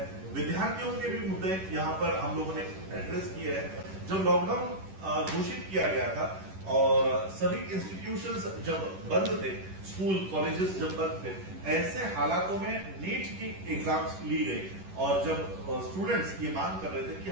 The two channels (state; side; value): late; left; 10 ms